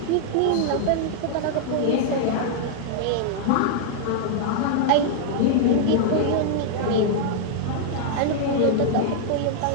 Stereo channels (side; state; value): both; different; correlation -0.01